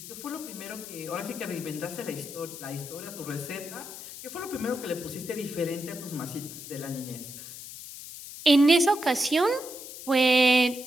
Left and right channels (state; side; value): noise; left; hiss, 12 dB below the sound